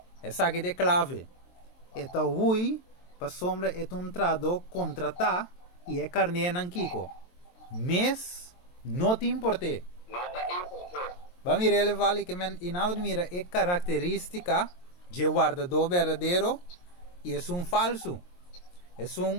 Essa aqui é clave. Está ui, para sombra, é trado contratar e é carne não kiko. Mas, não te importe. Vamos mirar, ele vale que mira é característica de guardador verdadeiro e é falso. É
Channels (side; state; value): right; late; 23 ms